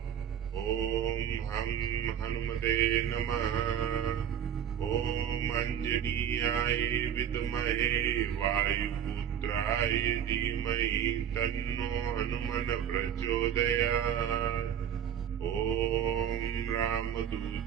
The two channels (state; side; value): quieter; left; 9.2 dB